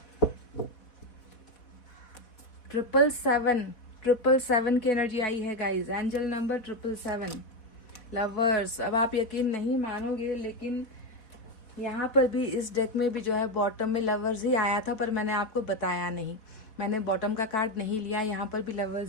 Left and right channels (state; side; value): late; right; 4.1 ms